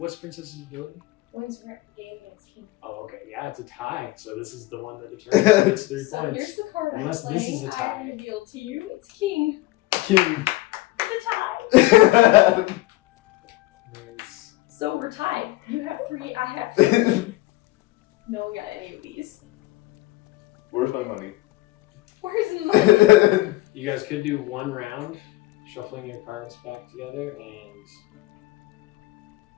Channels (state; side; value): quieter; right; 18.7 dB